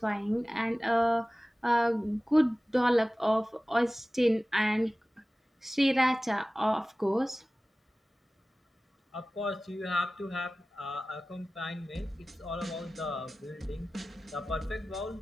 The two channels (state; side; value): normal; both; correlation 0.97